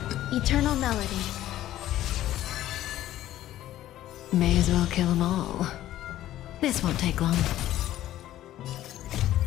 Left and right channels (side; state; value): right; quieter; 13.6 dB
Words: Eternal melody. May as well kill them all. This won't take long.